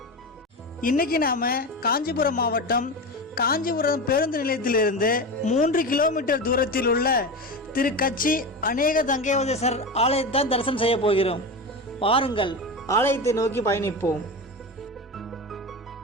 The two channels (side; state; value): both; normal; correlation 0.23